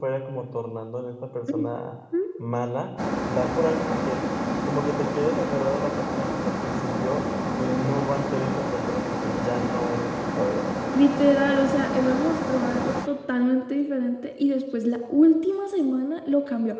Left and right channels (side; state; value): both; identical; correlation 1.00